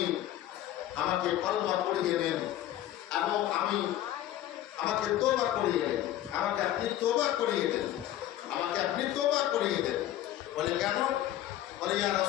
আমাকে কলমা পড়িয়ে দেন এবং আমাকে তওবা করিয়ে দেন, আমাকে আপনি তওবা করিয়ে দেন, আমাকে আপনি তওবা করিয়ে দেন। বলে কেন? বলে ইয়া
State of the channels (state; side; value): quieter; right; 13.0 dB